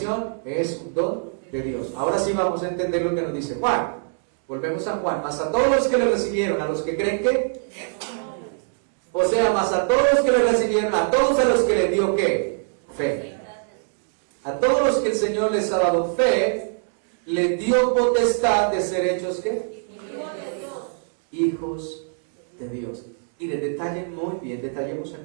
es un don de Dios. Ahora sí vamos a entender lo que nos dice Juan. Volvemos a Juan. Mas a todos los que le recibieron, a los que creen que, o sea, más a todos los que le recibieron, a todos a los que le dio ¿qué? Fe. A todos los que el Señor les ha dado fe, le dio potestad de ser hechos ¿qué? Hijos de Dios. Y le detallen muy bien, detallemos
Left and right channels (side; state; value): left; silent; digital silence